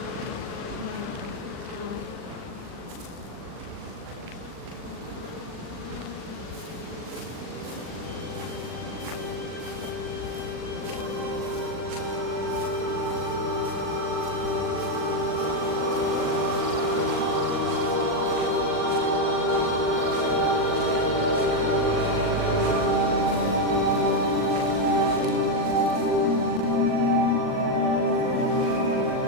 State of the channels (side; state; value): left; late; 40 ms